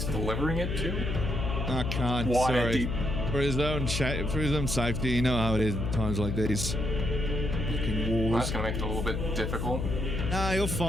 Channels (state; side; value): noise; left; hum, 2 dB below the sound